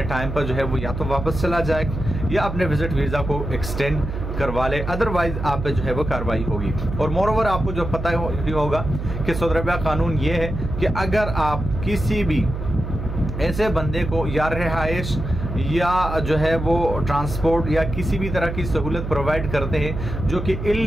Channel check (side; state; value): right; noise; hum, 6 dB below the sound